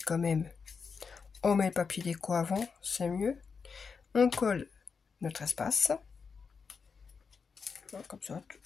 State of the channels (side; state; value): right; quieter; 5.5 dB